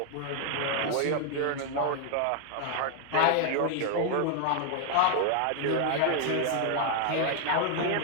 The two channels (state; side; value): different; both; correlation 0.00